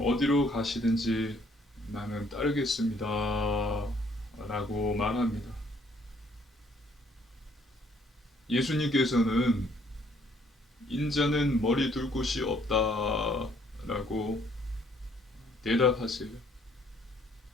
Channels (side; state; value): both; normal; correlation 0.64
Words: 어디로 가시든지 나는 따르겠습니다 라고 말합니다. 예수님께서는 인자는 머리 둘 곳이 없다 라고 대답하세요.